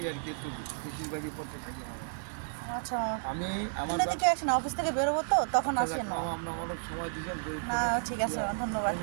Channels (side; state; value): left; silent; digital silence